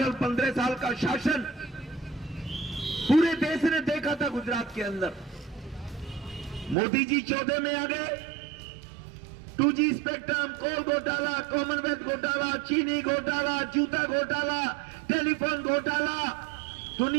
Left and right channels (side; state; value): left; drops out; at 6.8 s